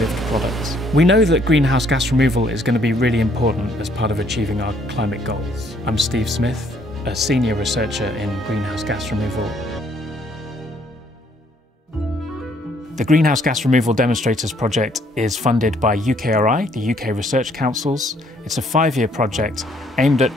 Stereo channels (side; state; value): both; normal; correlation 0.66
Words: products. We know that greenhouse gas removal is going to be really important as part of achieving our climate goals. I'm Steve Smith, a senior researcher in greenhouse gas removal. The Greenhouse Gas Removal Demonstrators project is funded by UKRI, the UK Research Councils. It's a 5-year project aimed at